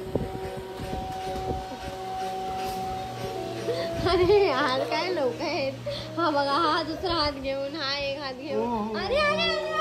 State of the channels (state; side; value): identical; both; correlation 1.00